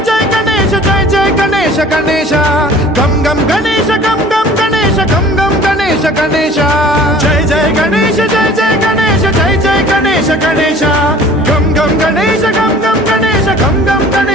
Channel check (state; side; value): normal; both; correlation 0.48